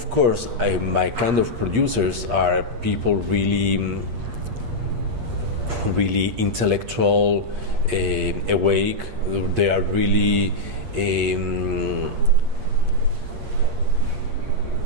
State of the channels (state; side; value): late; left; 8.5 ms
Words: course, my kind of producers are people really intellectual, awake. They are really they